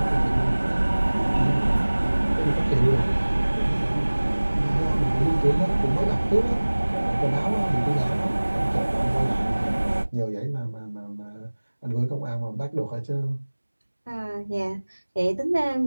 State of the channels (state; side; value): inverted; both; correlation -1.00